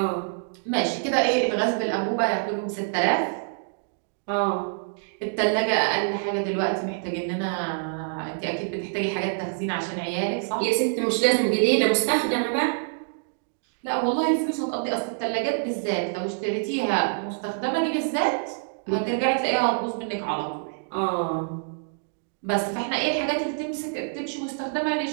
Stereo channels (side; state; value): left; silent; digital silence